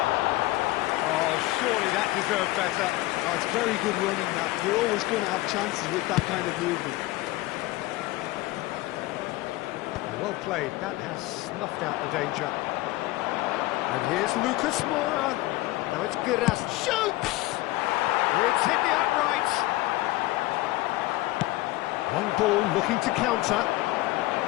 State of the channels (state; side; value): quieter; right; 18.8 dB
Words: Oh, surely that deserved better. Oh, it's very good running, that. You're always going to have chances with that kind of movement. Well played, that has snuffed out the danger. And here's Lucas Moura. Now it's Giras. Shoots! It's hit the upright. Long ball looking to counter.